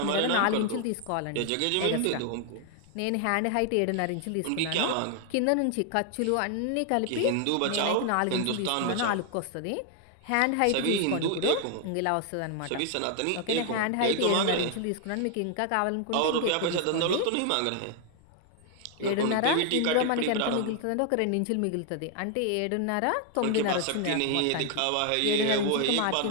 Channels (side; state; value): both; different; correlation 0.00